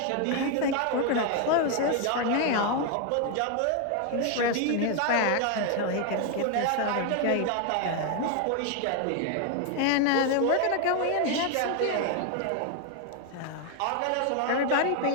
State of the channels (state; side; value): different; both; correlation 0.01